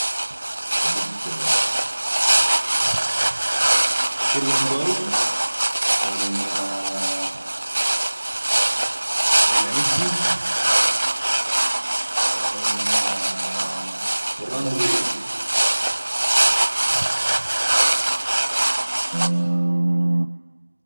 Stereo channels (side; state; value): both; inverted; correlation -1.00